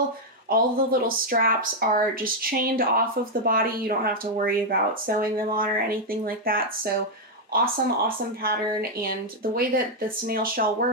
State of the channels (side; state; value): both; normal; correlation 0.00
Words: All the little straps are just chained off of the body. You don't have to worry about sewing them on or anything like that. So awesome, awesome pattern. And the way that the snail shell